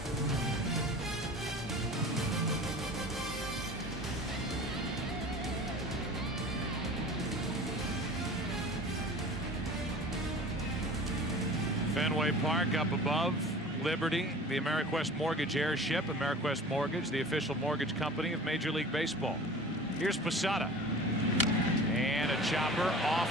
Fenway Park up above. Liberty, the AmeriQuest Mortgage airship. AmeriQuest Mortgage, the official mortgage company of Major League Baseball. Here's Posada. And a chopper off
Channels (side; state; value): both; normal; correlation 0.41